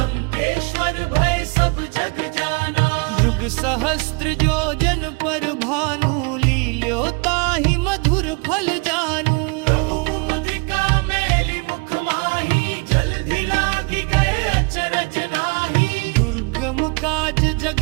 भय सब जग जाना। युग सहस्त्र जो जन पर भानु, लील्यो ताहि मधुर फल जानू। मुद्रिका मेली मुख माही, जलधि लागी गए अचरज नाही। दुर्गम काज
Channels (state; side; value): quieter; left; 32.6 dB